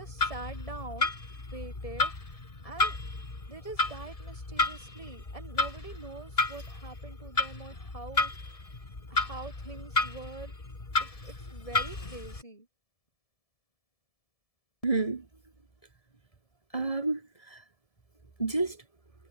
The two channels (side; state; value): right; late; 1.7 ms